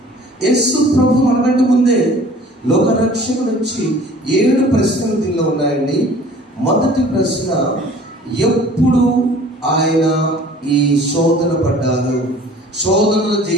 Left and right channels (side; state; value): both; normal; correlation 0.49